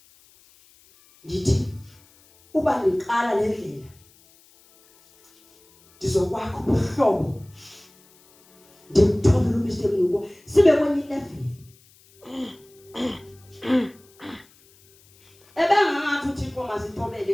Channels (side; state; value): left; noise; hiss, 29 dB below the sound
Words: Ndithi uba niqala le ndlela ndizokwakho ubuhlobo ndimthobela uMr Mnukwa sibe kwenye level ebengangathi uThixo